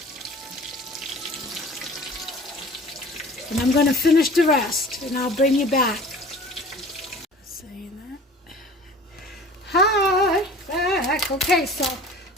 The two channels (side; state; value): both; normal; correlation 0.44